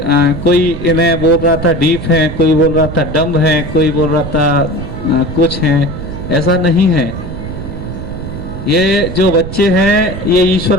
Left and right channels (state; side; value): noise; right; rumble, 8 dB below the sound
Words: कोई इन्हें बोल रहा था डीप है, कोई बोल रहा था डम्ब है, कोई बोल रहा था कुछ है, ऐसा नहीं है। ये जो बच्चे हैं ये ईश्वर